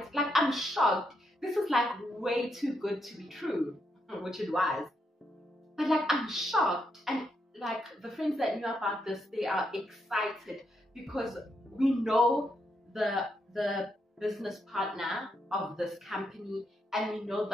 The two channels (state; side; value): normal; both; correlation 0.80